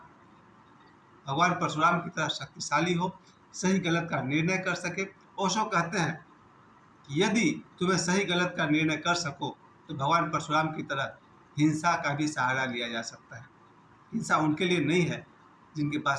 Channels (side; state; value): both; identical; correlation 1.00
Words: भगवान परशुराम की तरह शक्तिशाली हो, सही गलत का निर्णय कर सके। ओशो कहते हैं कि यदि तुम्हें सही गलत का निर्णय कर सको तो भगवान परशुराम की तरह हिंसा का भी सहारा लिया जा सकता है। हिंसा उनके लिए नहीं है जिनके